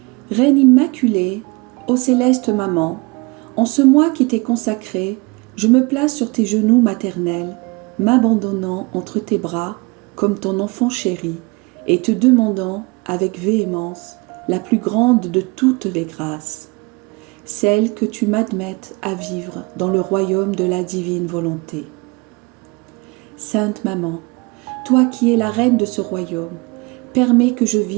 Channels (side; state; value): left; quieter; 26.5 dB